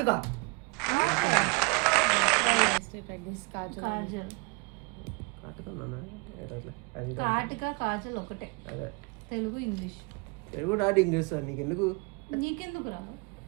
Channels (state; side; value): quieter; left; 30.9 dB